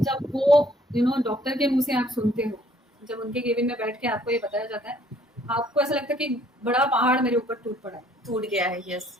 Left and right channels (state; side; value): normal; both; correlation 0.61